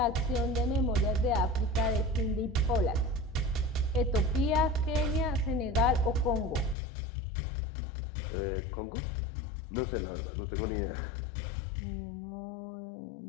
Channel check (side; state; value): right; drops out; at 6.8 s